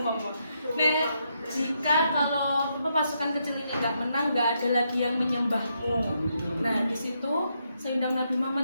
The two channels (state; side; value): inverted; both; correlation -0.79